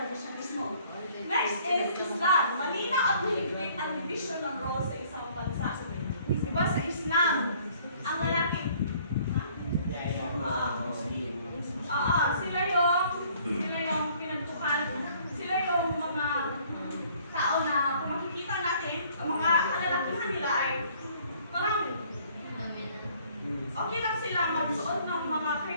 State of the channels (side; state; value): both; inverted; correlation -0.59